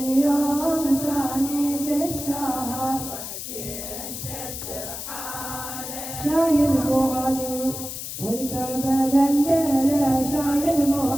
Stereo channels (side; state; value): left; noise; hiss, 8 dB below the sound